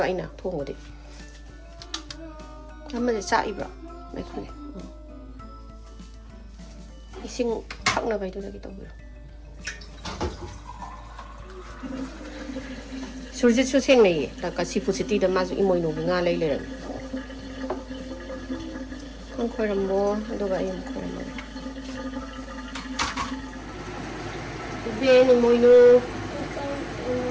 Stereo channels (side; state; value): both; identical; correlation 1.00